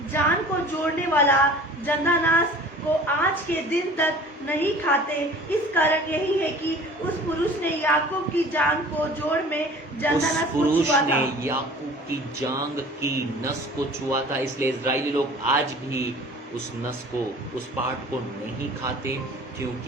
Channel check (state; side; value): normal; both; correlation 0.45